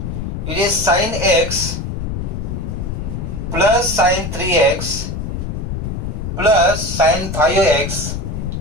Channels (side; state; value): left; noise; rumble, 4 dB below the sound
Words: It is sin x plus sin 3x plus sin 5x